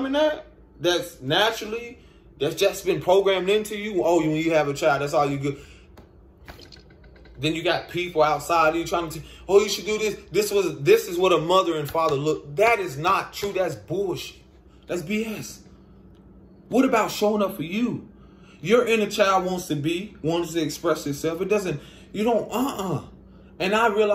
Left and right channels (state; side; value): identical; both; correlation 1.00